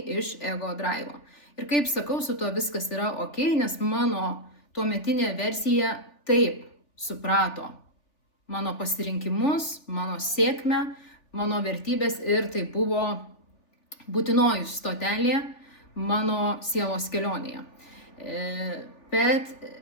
iš ego drivo. Ir kaip sakau, su to viskas yra ok, nes mano tuometinė versija taip suprato mano pasirinkimus, mano sėkmę, mano vertybės ir tai buvo būtinoji stotelė mano sielos kelionėje. Bet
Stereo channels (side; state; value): right; late; 3.5 ms